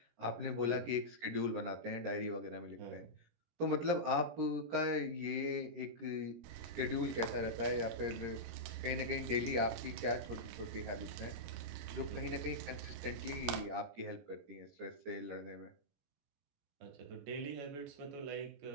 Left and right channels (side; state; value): left; late; 17 ms